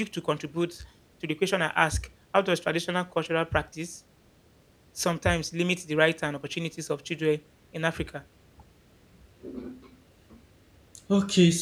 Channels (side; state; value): both; identical; correlation 1.00